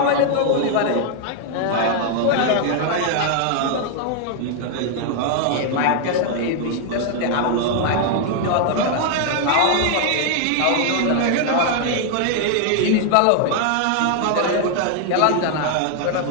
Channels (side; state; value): both; different; correlation 0.00